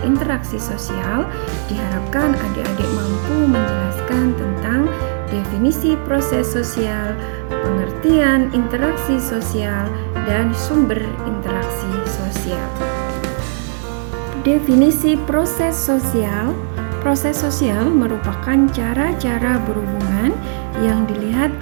interaksi sosial, diharapkan adik-adik mampu menjelaskan tentang definisi proses sosial, pengertian interaksi sosial, dan sumber interaksi sosial. Definisi proses sosial. Proses sosial merupakan cara-cara berhubungan yang dilihat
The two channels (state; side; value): silent; left; 67 dB below the other